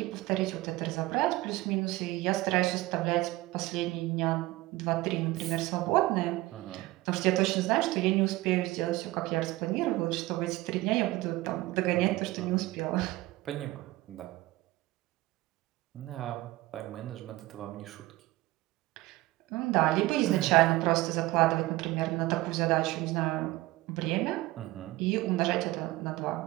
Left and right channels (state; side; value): quieter; left; 18.8 dB